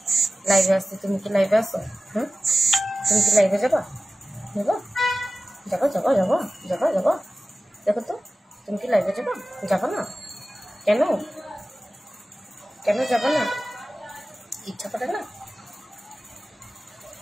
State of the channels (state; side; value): normal; both; correlation 0.96